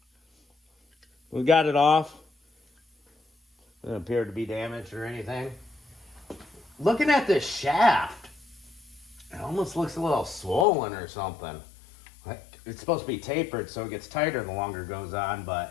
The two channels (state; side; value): drops out; right; at 10.7 s